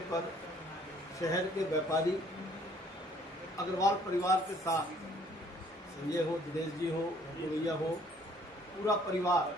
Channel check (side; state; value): both; normal; correlation 0.60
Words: पर शहर के व्यापारी अग्रवाल परिवार के साथ संजय हो, दिनेश जी हो, भैया हो, पूरा परिवार